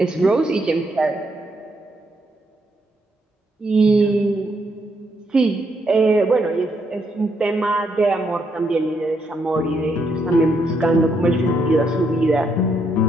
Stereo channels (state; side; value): normal; both; correlation 0.76